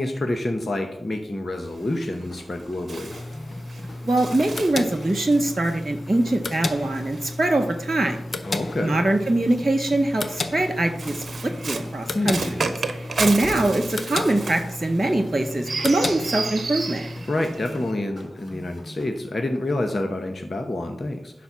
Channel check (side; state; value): both; normal; correlation 0.93